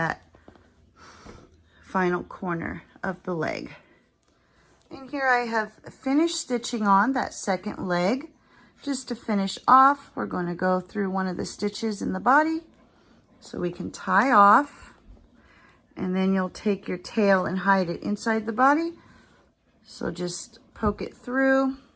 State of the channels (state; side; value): identical; both; correlation 1.00